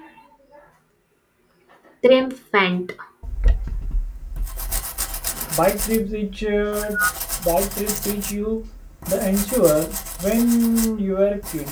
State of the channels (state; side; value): identical; both; correlation 1.00